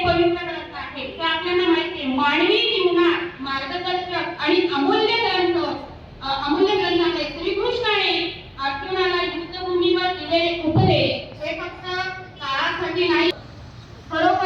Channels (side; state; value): both; identical; correlation 1.00